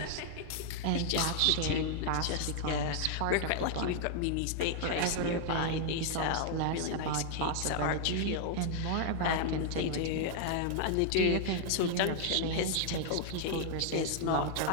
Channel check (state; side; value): different; both; correlation 0.00